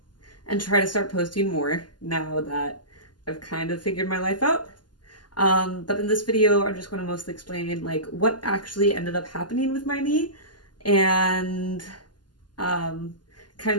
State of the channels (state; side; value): late; right; 0.71 ms